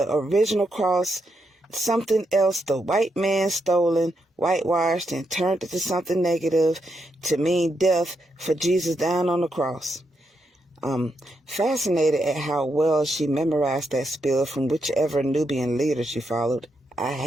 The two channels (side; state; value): both; normal; correlation 0.81